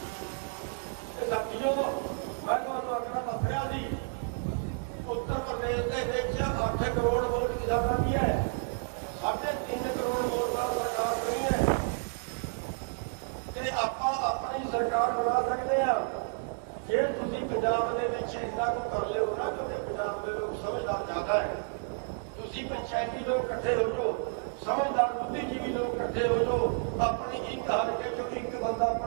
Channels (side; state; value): left; silent; 57 dB below the other